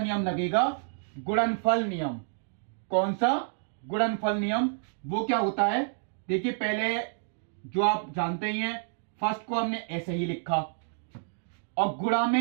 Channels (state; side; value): silent; left; digital silence